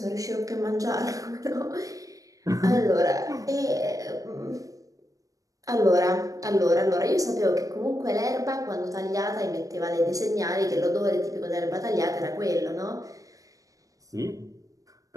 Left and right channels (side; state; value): left; late; 0.16 ms